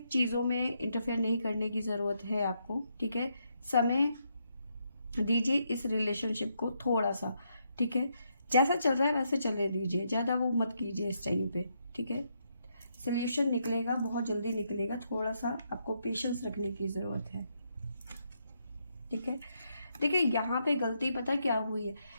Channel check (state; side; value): inverted; both; correlation -0.78